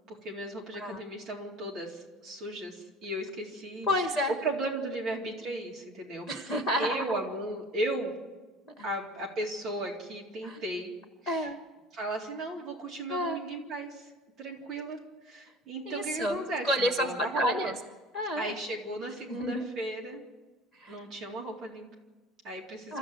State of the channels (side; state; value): both; normal; correlation 0.42